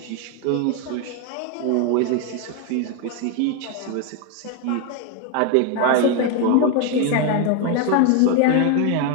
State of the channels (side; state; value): both; different; correlation 0.01